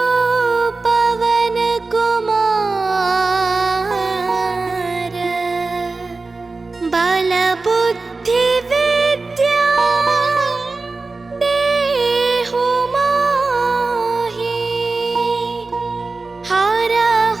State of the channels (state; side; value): quieter; left; 3.7 dB